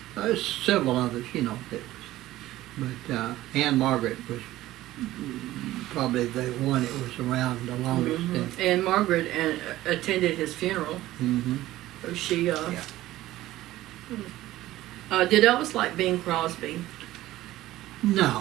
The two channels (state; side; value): quieter; left; 15.7 dB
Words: there's several others, that was. But Anne Margaret was probably the one that was around the longest. Mm-hmm. Anne Margaret attended his funeral. Mm-hmm. So she, did Elvis like Bing Crosby? No,